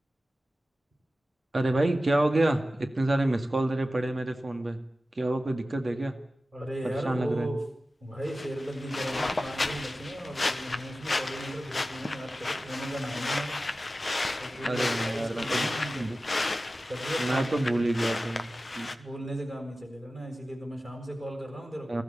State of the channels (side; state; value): both; normal; correlation 0.95